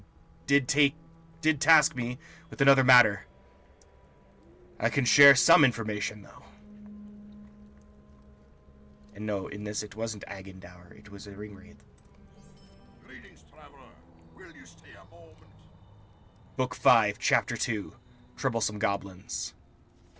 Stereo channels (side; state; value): both; identical; correlation 1.00